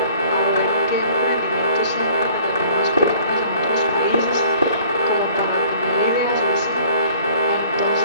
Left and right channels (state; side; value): inverted; both; correlation -0.53